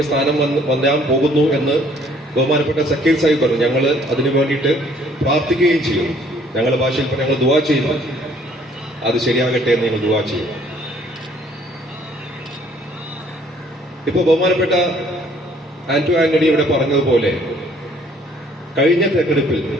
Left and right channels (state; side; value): normal; both; correlation 0.60